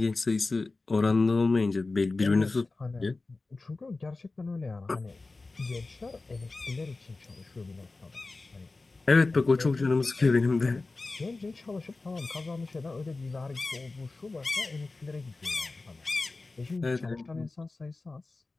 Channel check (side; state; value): right; quieter; 3.5 dB